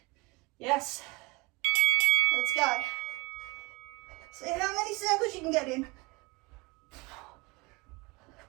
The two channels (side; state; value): left; quieter; 25.2 dB